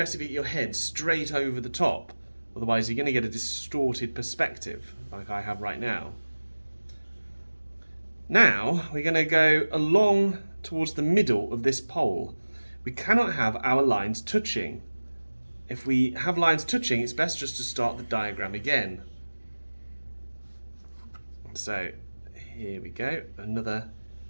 if you get your head straight over the top, otherwise you're going to get a distorted perspective like I have right now. Now we're going to go along towards the middle of this pole. We cannot have our lines touching. If we have lines touching, it's best just to start the diagram again. So here we go, another,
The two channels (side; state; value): both; inverted; correlation -1.00